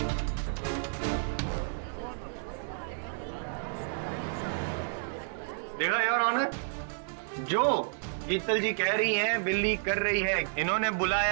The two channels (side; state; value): left; silent; digital silence